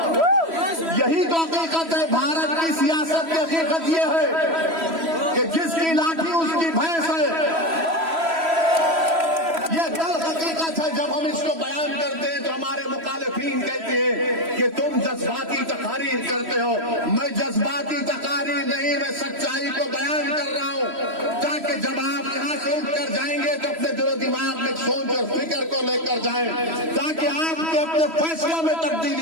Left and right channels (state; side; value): late; left; 3.1 ms